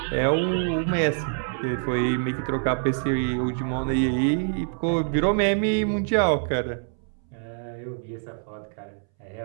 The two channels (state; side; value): silent; left; 61 dB below the other